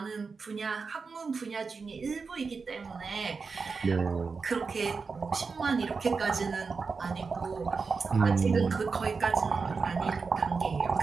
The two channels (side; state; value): left; quieter; 4.8 dB